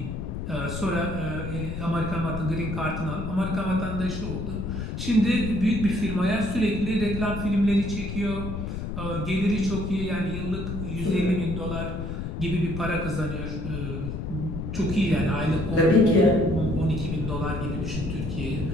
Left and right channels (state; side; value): noise; left; rumble, 5 dB below the sound